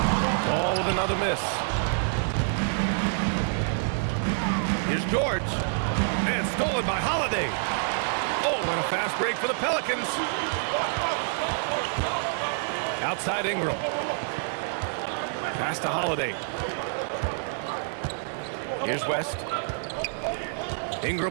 Ball with another miss. Here's George. And stolen by Holiday. Oh, and a fast break for the Pelicans. Outside Ingram. Pass to Holiday. Here's West.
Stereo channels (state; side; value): silent; left; 60 dB below the other